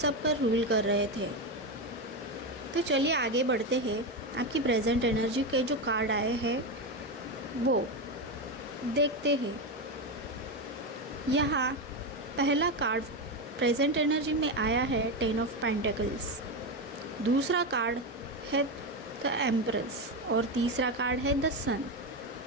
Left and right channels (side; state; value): both; normal; correlation 0.13